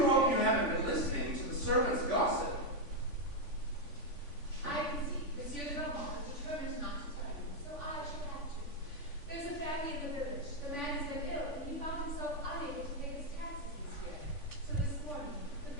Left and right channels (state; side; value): late; right; 3.5 ms